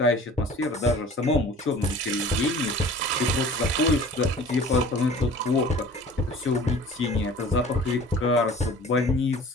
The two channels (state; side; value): normal; both; correlation 0.45